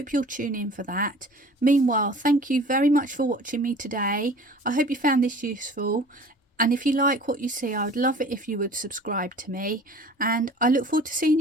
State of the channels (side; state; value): both; normal; correlation 0.45